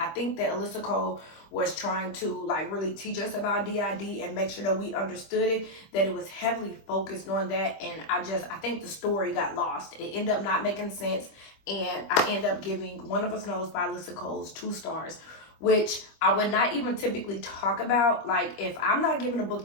think that Alyssa Cole was trying to like really teach us about DID and make sure that we understood it, that it was heavily focused on that. And I think the story got lost. It ended up not making sense, and I ended up giving One of Us Knows by Alyssa Cole's 2 stars, which I would not even typically talk about. Like, if I'm not giving a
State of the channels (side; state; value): right; late; 25 ms